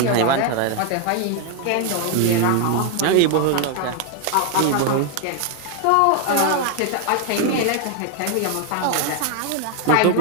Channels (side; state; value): both; different; correlation 0.01